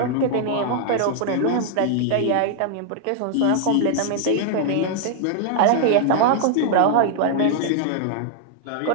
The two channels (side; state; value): both; different; correlation -0.01